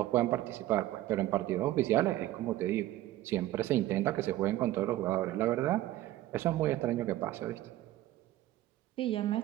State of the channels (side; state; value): left; quieter; 15.0 dB